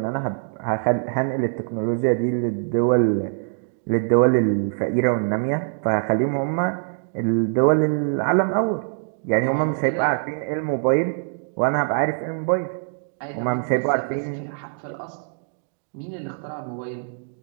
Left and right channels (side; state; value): left; silent; digital silence